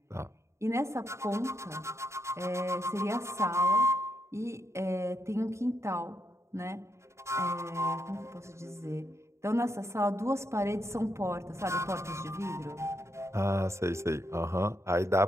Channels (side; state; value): left; late; 0.14 ms